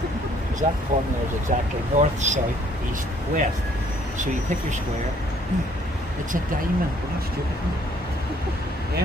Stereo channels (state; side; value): normal; both; correlation 0.62